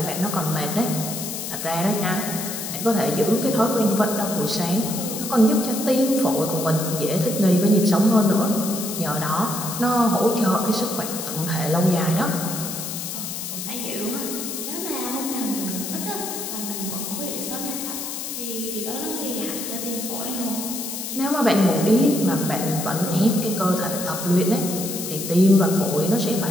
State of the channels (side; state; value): left; noise; hiss, 6 dB below the sound